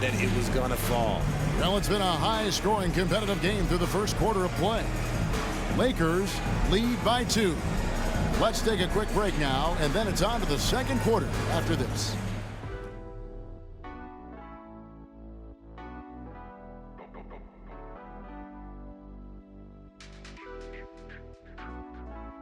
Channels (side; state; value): both; identical; correlation 1.00